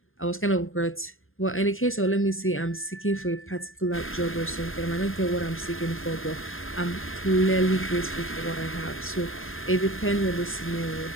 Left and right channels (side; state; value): right; late; 0.60 ms